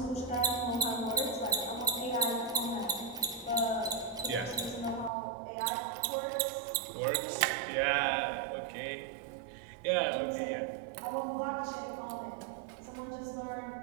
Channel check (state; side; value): drops out; left; at 5.1 s